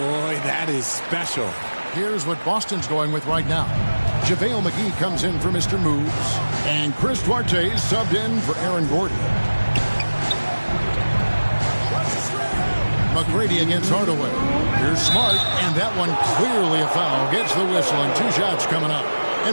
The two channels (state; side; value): inverted; both; correlation -1.00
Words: that is special. Here's what Boston's going with right now. JaVale McGee comes in for Mr. Moves. And Chris Duarte is subbed in for Aaron Gordon. McGrady against Hardaway. Here's Smart, and that one clearly a foul. Gets the whistle, and 2 shots coming up.